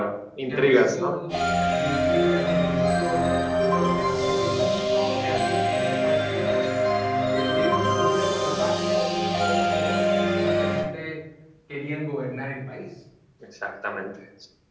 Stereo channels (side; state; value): both; identical; correlation 1.00